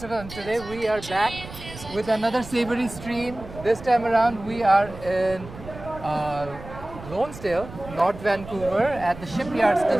and today we are back with another Savory stream. This time around we are in Lonesdale, North Vancouver at the Shipyards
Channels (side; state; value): right; noise; rumble, 14 dB below the sound